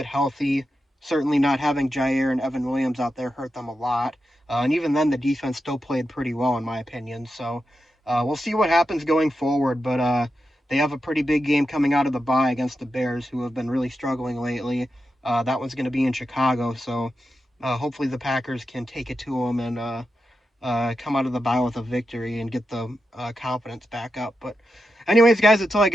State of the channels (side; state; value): both; normal; correlation 0.88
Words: healthy. Certainly not having Jair and Evan Williams out there hurt them a lot. And even then, the defense still played pretty well, in my opinion. So we'll see what happens going forward. But they have a pretty big game coming out of the bye against the Bears, who have been really struggling lately. That one's going to be in Chicago. So hopefully the Packers can take it to them and come out of the bye with a victory and get the confidence back up. But anyways, guys, that's all I